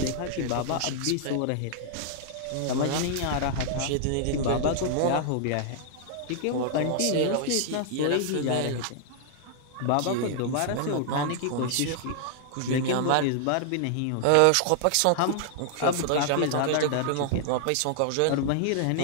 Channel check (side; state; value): both; different; correlation -0.01